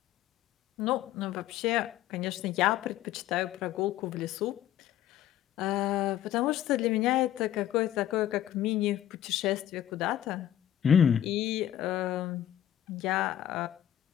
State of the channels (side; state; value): right; quieter; 11.6 dB